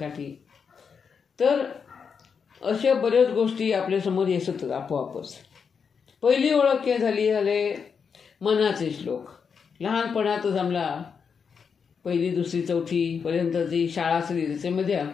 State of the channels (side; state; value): right; quieter; 6.2 dB